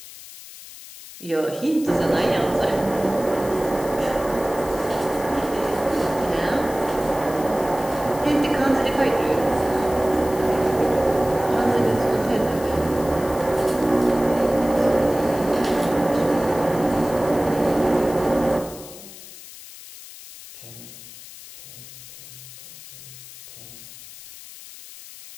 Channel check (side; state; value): left; noise; hiss, 16 dB below the sound